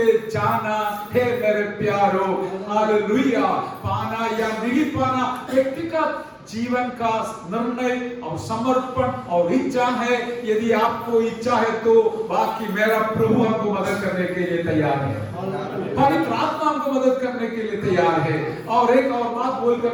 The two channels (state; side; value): identical; both; correlation 1.00